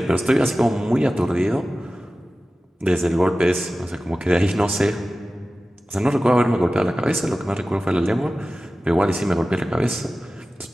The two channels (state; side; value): normal; both; correlation 0.95